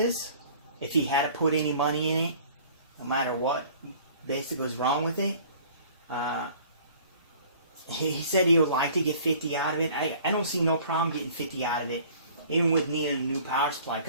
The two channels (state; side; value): inverted; both; correlation -0.51